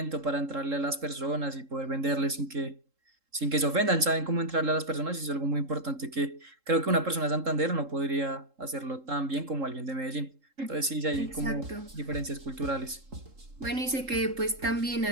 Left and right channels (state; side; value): late; left; 3.7 ms